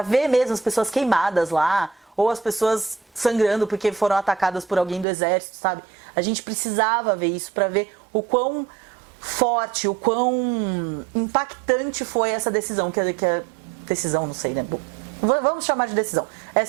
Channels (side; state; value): left; drops out; at 5.1 s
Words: ver mesmo as pessoas queimadas lá, ou as pessoas sangrando porque foram atacadas por alguém do exército, sabe? A gente precisava ver isso pra ver o quão forte, o quão impactante foi essa decisão, que a decisão, não sei, né? Bom, vamos chamar de decisão.